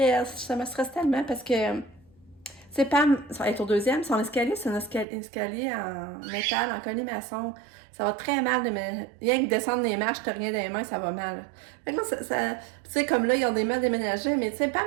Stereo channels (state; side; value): drops out; left; at 5.1 s